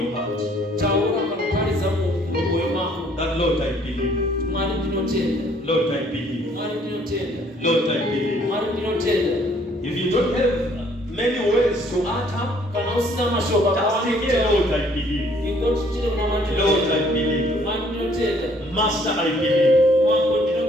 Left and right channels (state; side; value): normal; both; correlation 0.61